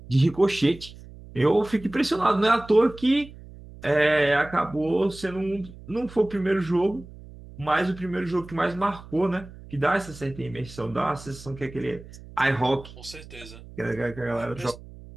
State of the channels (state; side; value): noise; right; hum, 18 dB below the sound